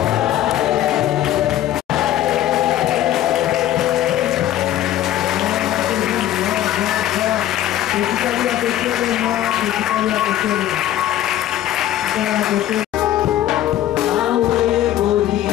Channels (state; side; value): quieter; right; 12.8 dB